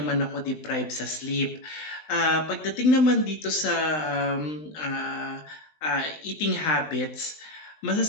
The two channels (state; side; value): late; right; 20 ms